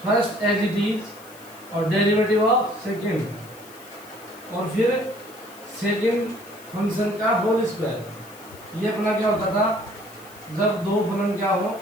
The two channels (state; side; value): noise; left; hiss, 21 dB below the sound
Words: first as it is और डेरिवेटिव ऑफ सेकेंड, और फिर सेकेंड फंक्शन का होल स्क्वायर। ये अपना क्या होता था जब दो फलन क्या हो